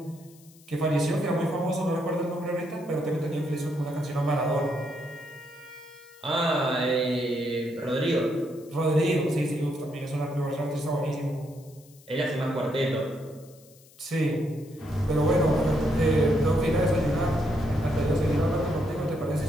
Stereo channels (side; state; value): left; noise; hiss, 26 dB below the sound